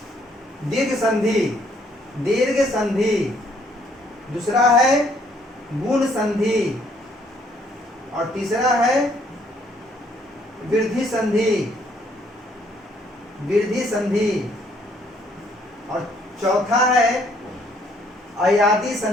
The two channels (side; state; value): both; normal; correlation 0.66